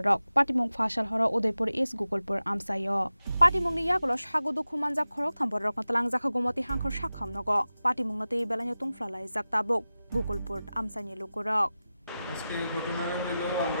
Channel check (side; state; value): both; inverted; correlation -0.94